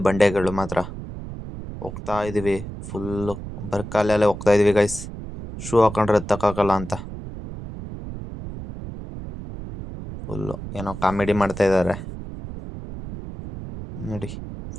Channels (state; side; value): noise; right; rumble, 10 dB below the sound